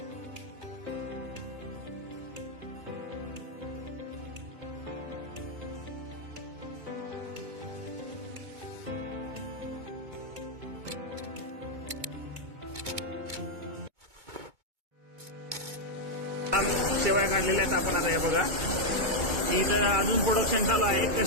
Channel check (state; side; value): late; left; 2.2 ms